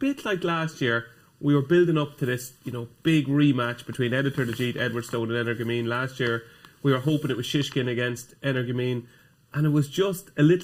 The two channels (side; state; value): both; identical; correlation 1.00